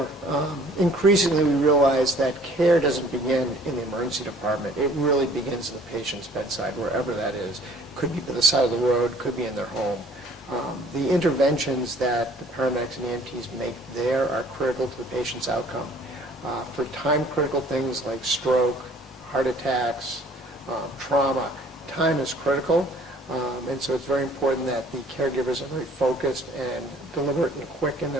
Increasingly, we realize that care doesn't begin in the emergency department. It really begins in the patient's bedside, wherever that is. Could be by the side of the road, could be in their home. The interventions that the paramedics and EMTs make there are critical to the patient's outcome. For time-critical things like stroke, heart attacks, trauma, time is critical, and so it's very important that the caregivers are very focused and deliberate and quick in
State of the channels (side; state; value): both; normal; correlation 0.55